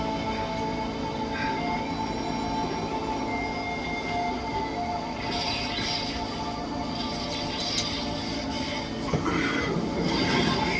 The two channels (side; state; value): both; identical; correlation 1.00